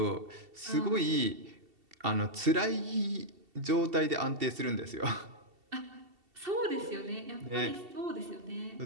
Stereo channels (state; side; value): late; left; 2.7 ms